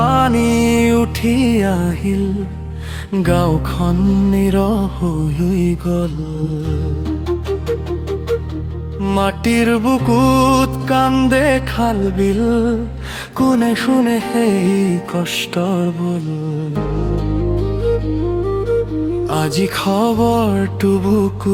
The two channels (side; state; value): both; identical; correlation 1.00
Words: উঠি আহিল, গাঁওখন নিৰহ হৈ গ'ল। মাটিৰ বুকুত কান্দে খাল বিল, কোনে শুনে সেই কষ্টৰ বোল। আজি খবৰটো